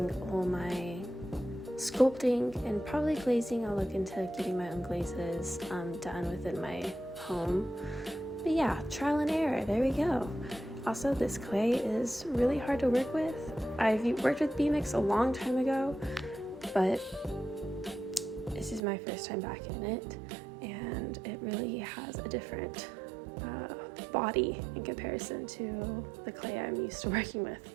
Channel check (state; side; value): drops out; left; at 18.8 s